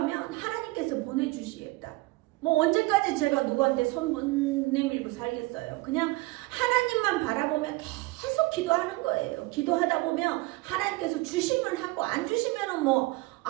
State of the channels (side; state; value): left; quieter; 22.0 dB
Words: 하나님께서 보내주시겠다. 뭐 언제까지 제가 누구한테 손 못 내밀고 살겠어요. 그냥 하나님만 바라보면 계속 기도하는 거예요. 기도하다 보면 하나님께서 주시면 하고 안 주시면 뭐